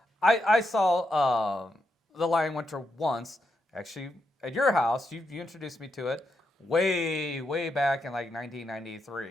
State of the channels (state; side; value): normal; both; correlation 0.83